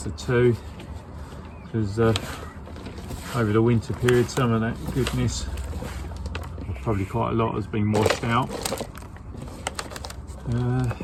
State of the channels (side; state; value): both; identical; correlation 1.00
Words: the two, because over the winter period, some of that goodness, probably quite a lot, has been washed out.